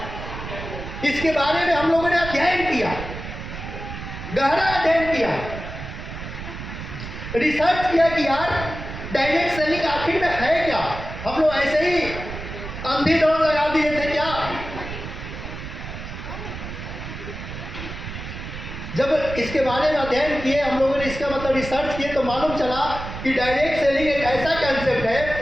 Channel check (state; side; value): noise; right; rumble, 9 dB below the sound